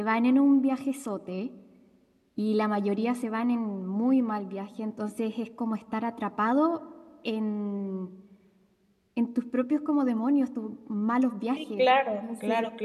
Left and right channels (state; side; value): identical; both; correlation 1.00